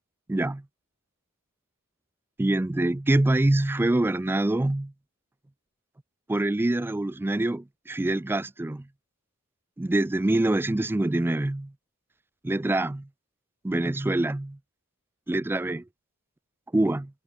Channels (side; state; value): both; normal; correlation 0.90